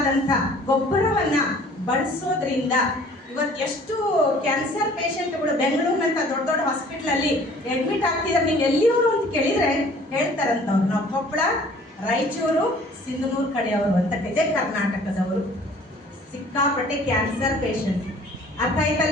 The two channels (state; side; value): normal; both; correlation 0.52